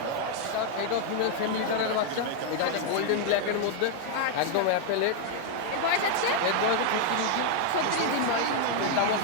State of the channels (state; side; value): different; both; correlation 0.00